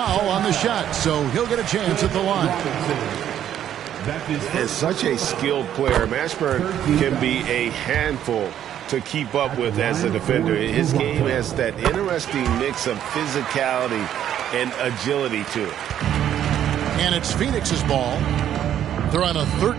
on the shot, so he'll get a chance at the line. As such a skilled player, Mashburn can be a handful to keep up with as a defender. His game has that interesting mix of physicality and agility to it. And it's Phoenix's ball. They're on a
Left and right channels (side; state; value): left; quieter; 10.5 dB